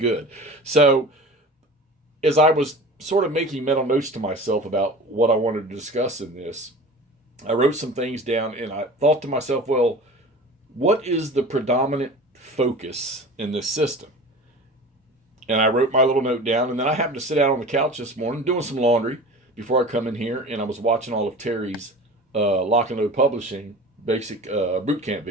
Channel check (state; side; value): normal; both; correlation 0.37